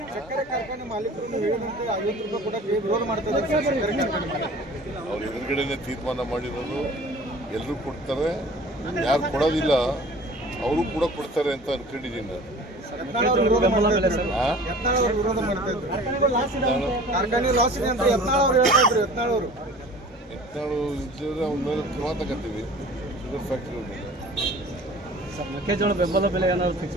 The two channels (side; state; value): both; normal; correlation 0.45